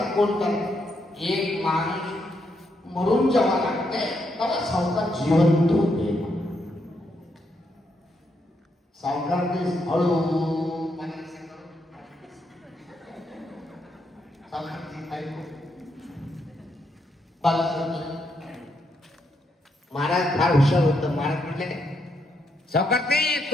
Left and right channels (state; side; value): normal; both; correlation 0.78